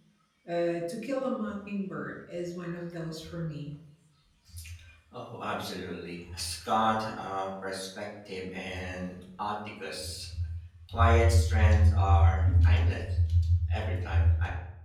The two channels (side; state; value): both; identical; correlation 1.00